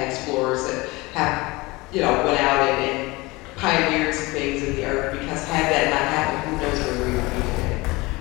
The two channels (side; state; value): right; quieter; 22.9 dB